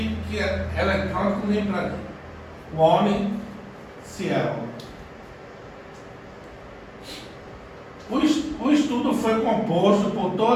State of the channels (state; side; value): identical; both; correlation 1.00